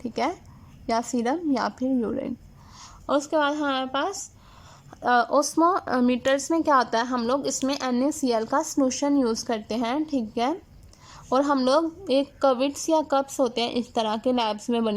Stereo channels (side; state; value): both; identical; correlation 1.00